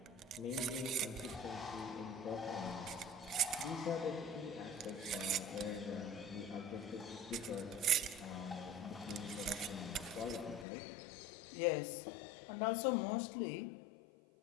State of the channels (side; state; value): right; drops out; at 10.7 s